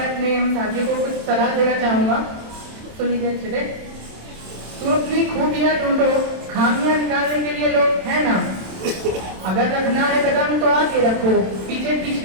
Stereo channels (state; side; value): late; left; 27 ms